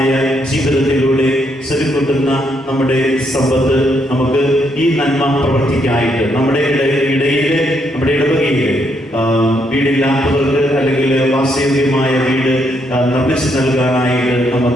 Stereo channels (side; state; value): both; normal; correlation 0.75